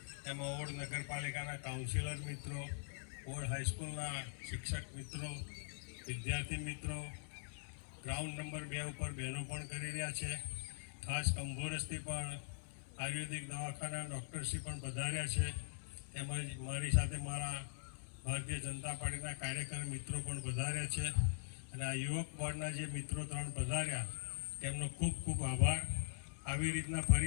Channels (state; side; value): silent; right; digital silence